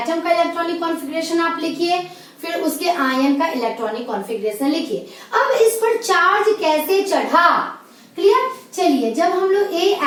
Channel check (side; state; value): both; identical; correlation 1.00